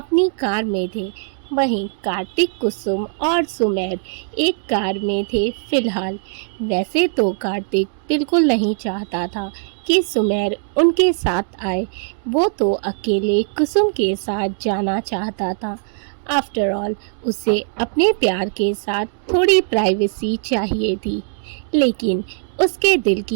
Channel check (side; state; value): left; silent; 66 dB below the other